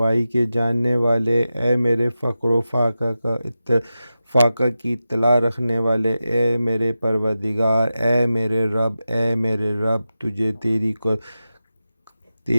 کے جاننے والے، اے میرے فقر و فاقہ کی اطلاع رکھنے والے، اے میرے پروردگار، اے میرے رب، اے میرے رب، تجھے تیری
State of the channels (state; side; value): inverted; both; correlation -0.92